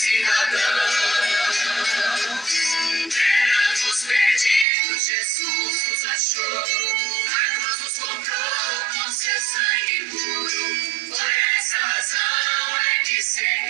Éramos perdidos, Jesus nos achou, na cruz nos comprou com seu sangue puro. Por essa razão é que ser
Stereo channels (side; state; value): left; drops out; at 4.7 s